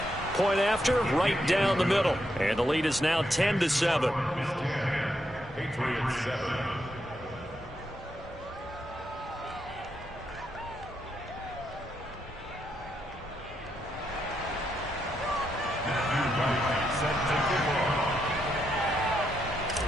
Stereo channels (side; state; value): both; normal; correlation 0.80